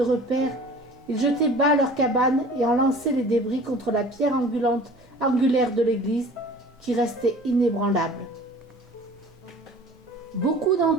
repère, ils jetaient bas leurs cabanes et en lançaient les débris contre la pierre angulaire de l'église, qui restait inébranlable. Beaucoup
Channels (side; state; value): both; normal; correlation 0.45